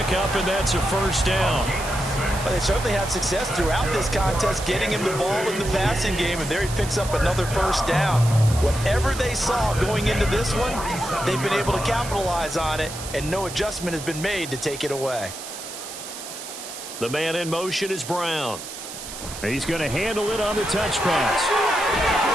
and that's a first down. Well, they certainly had success throughout this contest, getting him the ball in the passing game, and there he picks up another first down. Whatever they saw going into this one, they've been able to capitalize on it, and no adjustment has been made to take it away. The man in motion is Brown. He's going to handle it on the touch pass.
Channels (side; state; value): right; noise; hiss, 11 dB below the sound